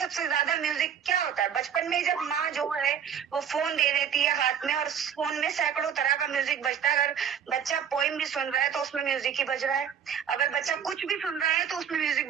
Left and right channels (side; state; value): left; quieter; 8.1 dB